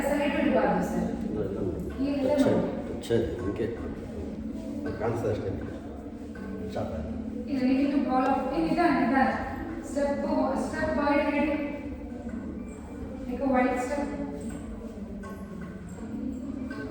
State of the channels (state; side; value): identical; both; correlation 1.00